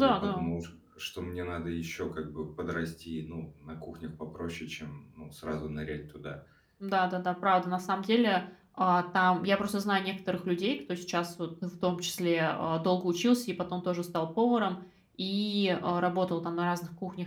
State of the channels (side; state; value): both; identical; correlation 1.00